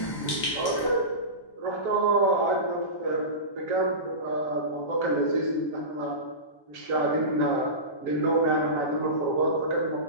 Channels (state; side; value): late; right; 1.1 ms